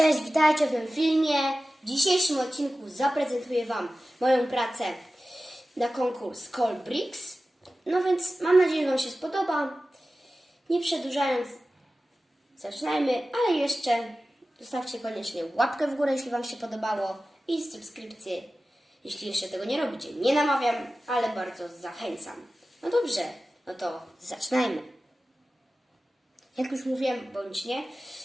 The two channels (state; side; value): normal; both; correlation 0.95